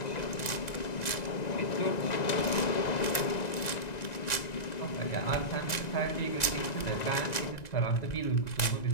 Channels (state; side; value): late; right; 1.9 ms